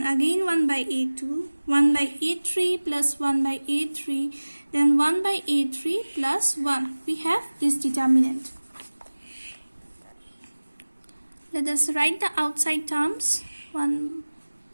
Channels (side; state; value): both; inverted; correlation -1.00